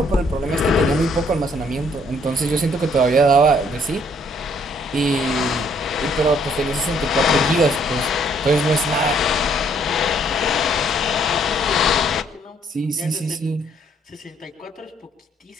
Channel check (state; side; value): normal; both; correlation 0.65